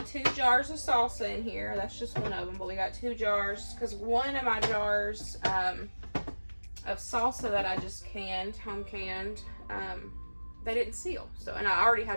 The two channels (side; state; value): both; inverted; correlation -1.00